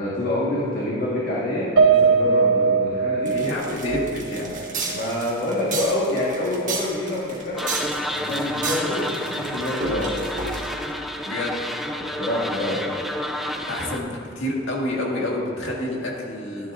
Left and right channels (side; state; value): both; normal; correlation -0.02